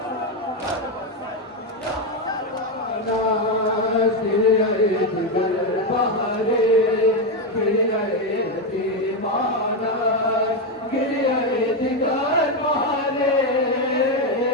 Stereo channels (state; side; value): normal; both; correlation 0.07